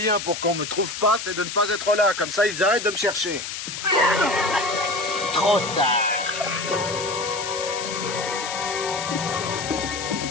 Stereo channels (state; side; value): noise; left; hiss, 7 dB below the sound